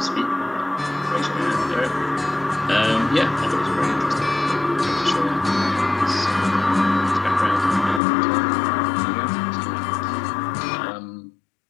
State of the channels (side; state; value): right; drops out; at 8.0 s